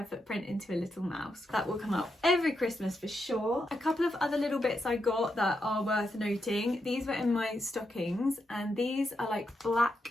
footprint into a little mouse. That will come up every Christmas for sure. A couple of other little bits I got that are worth noting. These were in my stockings, and these are like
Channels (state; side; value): normal; both; correlation 0.83